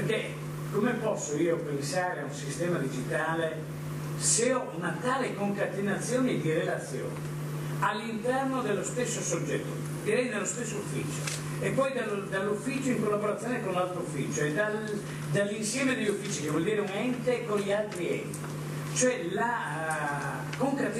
come posso io pensare a un sistema digitale se ho una tale concatenazione di relazioni all'interno dello stesso soggetto, direi nello stesso ufficio, e poi dall'ufficio in collaborazione con l'altro ufficio e dall'insieme degli uffici, che vuol dire un ente con gli altri enti, cioè la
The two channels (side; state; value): both; identical; correlation 1.00